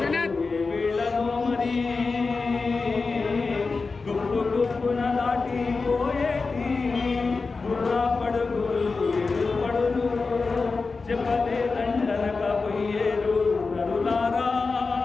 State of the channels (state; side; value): quieter; right; 4.2 dB